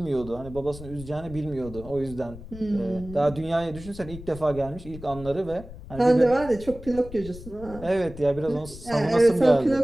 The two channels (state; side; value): noise; left; rumble, 15 dB below the sound